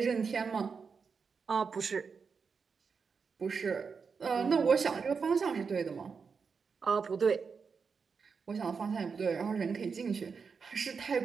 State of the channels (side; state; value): left; quieter; 5.5 dB